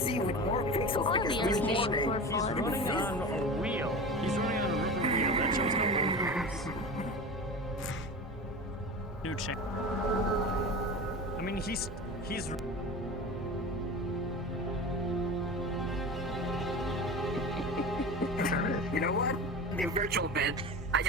with more pixels like He's a running on a wheel. He's running on a rubber wheel. That shows no movements. New chassis. I mean, he's. You know what? The virtual bed. I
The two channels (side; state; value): both; normal; correlation 0.31